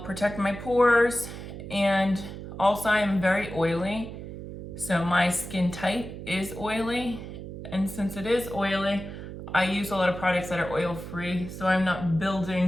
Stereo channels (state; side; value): noise; right; hum, 10 dB below the sound